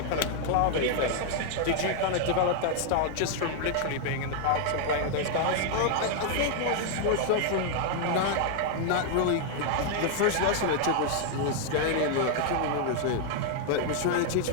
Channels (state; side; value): different; both; correlation 0.00